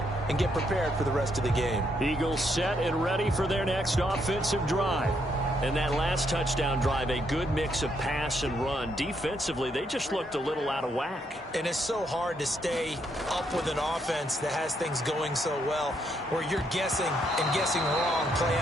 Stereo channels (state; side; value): normal; both; correlation 0.75